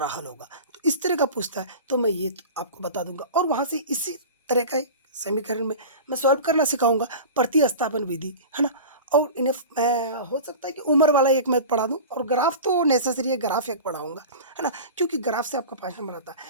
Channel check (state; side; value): inverted; both; correlation -0.33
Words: हल होगा। तो इस तरह का पूछता है तो मैं ये आपको बता दूंगा, और वहाँ से इसी तरह का समीकरण में मैं सॉल्व करना सिखाऊंगा, प्रतिस्थापन विधि, है ना। और इन्हें मैं हो सकता है कि उम्र वाला एक मैथ पढ़ा दूं, और ग्राफ तो नेसेसरी है, ग्राफ एक पढ़ाऊंगा, है ना, क्योंकि ग्राफ से आपका 5 नंबर आता है।